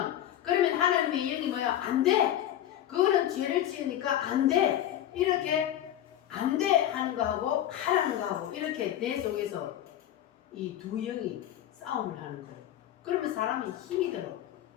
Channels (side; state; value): right; quieter; 11.8 dB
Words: 그러면 하나님의 영이 뭐야? 안 돼! 그거는 죄를 지으니까 안 돼! 이렇게 안 돼! 하는 거하고 하라는 거하고 이렇게 내 속에서 이 두 영이 싸움을 하는 거예요. 그러면 사람이 힘이 들어.